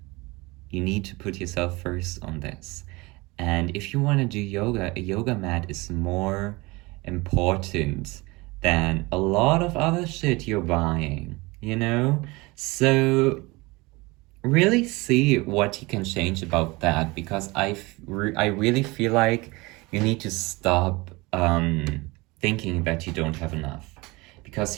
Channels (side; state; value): left; quieter; 23.7 dB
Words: You need to put yourself first on this. And if you want to do yoga, a yoga mat is more important than a lot of other shit you're buying, you know? So really see what you can change about that, because I really feel like you need to stop thinking that you don't have enough,